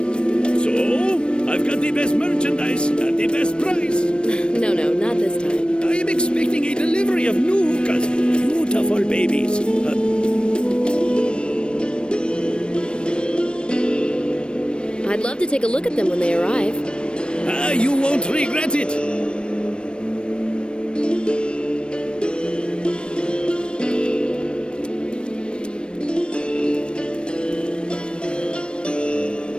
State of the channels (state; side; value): late; right; 0.055 ms